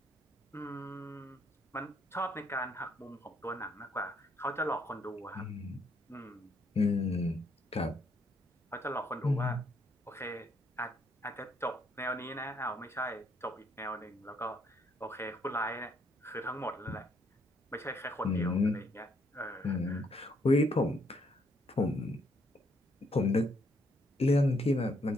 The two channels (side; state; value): both; normal; correlation 0.71